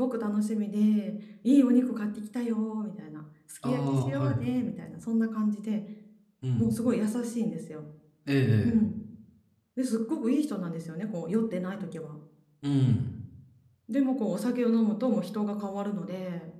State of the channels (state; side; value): identical; both; correlation 1.00